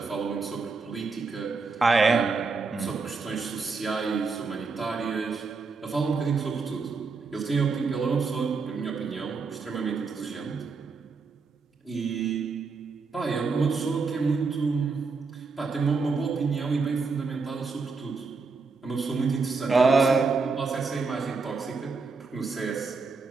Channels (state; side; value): quieter; left; 4.5 dB